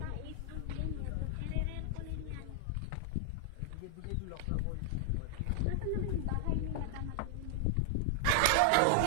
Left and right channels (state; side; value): different; both; correlation 0.00